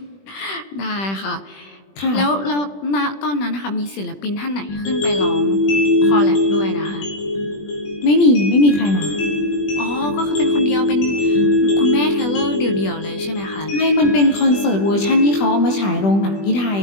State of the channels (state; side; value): late; right; 20 ms